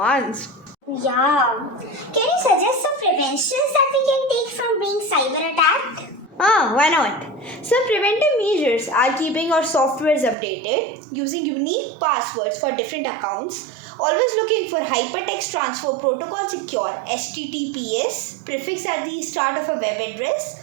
Yeah. Can you suggest some preventions that we can take from being cyber attacked? Why not? Some preventive measures are keeping our softwares updated, using unique passwords for different accounts, always looking for Hypertext Transfer Protocol Secure HTTPS prefix at the start of a web address,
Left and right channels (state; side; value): drops out; left; at 10.4 s